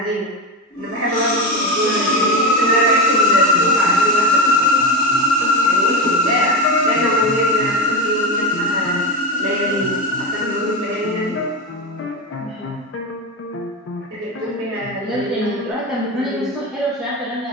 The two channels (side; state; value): both; normal; correlation 0.17